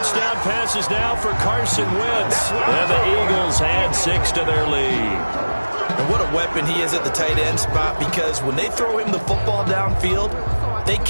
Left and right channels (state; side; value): inverted; both; correlation -1.00